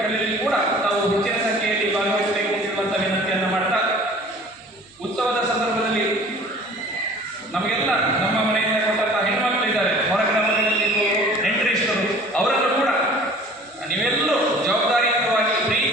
ಕೂಡ ತಾವು ಹೆಚ್ಚಿನ ಸಂಖ್ಯೆಯಲ್ಲಿ ಭಾಗವಹಿಸಬೇಕು ಎಂಬಂತ ವಿನಂತಿಯನ್ನು ಮಾಡ್ತಾ, ಉತ್ಸವದ ಸಂದರ್ಭದಲ್ಲಿ ನಮಗೆಲ್ಲ ನಮ್ಮ ಮನೆಯಿಂದ ಕೊಟ್ಟಂತಹ ಹೆಣ್ಮಕ್ಳು ಇದ್ದಾರೆ, ಹೊರ ಗ್ರಾಮಗಳಲ್ಲಿ ನೆಂಟರಿಷ್ಟರು, ಅವರನ್ನು ಕೂಡ ನೀವೆಲ್ಲರೂ ಜವಾಬ್ದಾರಿಯುತವಾಗಿ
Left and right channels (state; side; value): normal; both; correlation 0.48